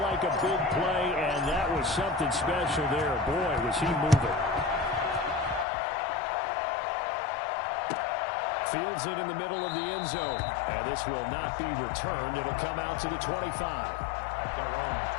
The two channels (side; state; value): right; drops out; at 5.7 s